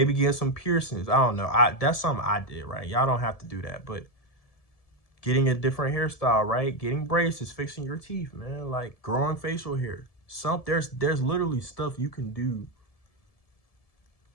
getting some piercings. I don't know. That's something I did, right? Y'all don't have to do that, but getting a different hairstyle, right? Getting braces, fixing your teeth, man, like growing facial hair. There's literally stuff you can do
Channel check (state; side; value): late; right; 1.7 ms